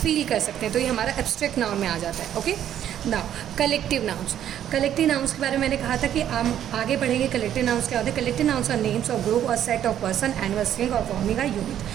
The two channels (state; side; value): quieter; left; 10.6 dB